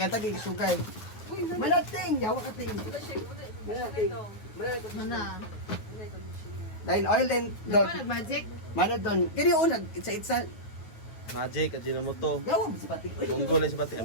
sugar. Malating. Yawa ka ting. Malating. Mana? Dahil oil din doon. Ano, magic? Mana doon. Kaya yung unag, itsa-itsa. Magic, Ajinomoto. Yawa mo si Pati. Munggo lang si Bating.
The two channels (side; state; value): right; late; 9.4 ms